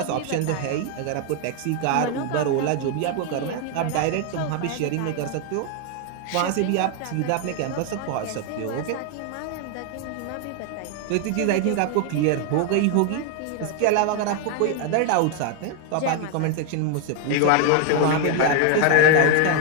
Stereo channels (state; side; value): different; both; correlation 0.01